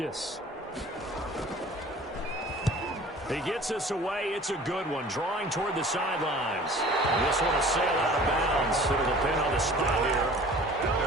He gets us away. It's a good one, drawing toward the sidelines. This one will sail out of bounds. It'll depend on the spot here.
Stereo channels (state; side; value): normal; both; correlation 0.46